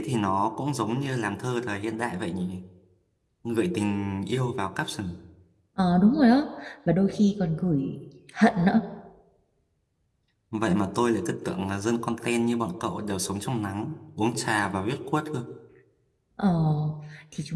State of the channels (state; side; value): identical; both; correlation 1.00